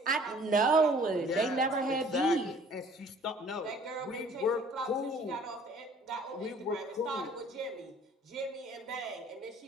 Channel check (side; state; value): both; normal; correlation 0.53